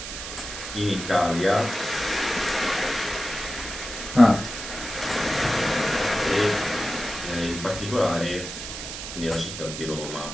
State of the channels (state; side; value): noise; right; hiss, 8 dB below the sound